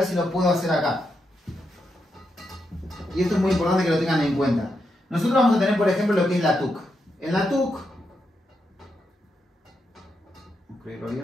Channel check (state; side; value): normal; both; correlation 0.83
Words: si lo puedo hacer acá. Y esto es muy importante que lo tengan en cuenta. Nosotros vamos a tener, por ejemplo, lo que es la TUC. En la TUC,